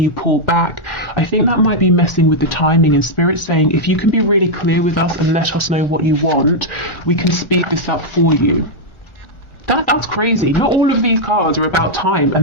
you pull back, I think that might be messing with the timing. And Spirit saying if you can be really clear with us and let us know what you want, we can speed this up for you. That's crazy. Not all of these cards are about time,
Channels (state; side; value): late; right; 1.4 ms